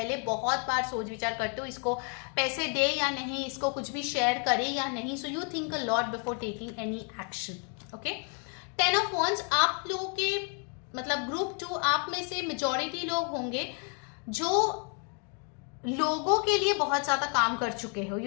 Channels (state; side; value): quieter; right; 39.7 dB